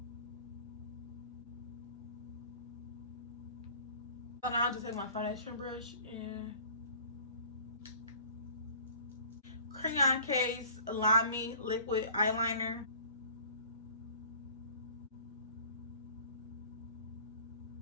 So now I'll just take my foundation brush and Crayon Case Lamy liquid eyeliner.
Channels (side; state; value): both; inverted; correlation -0.48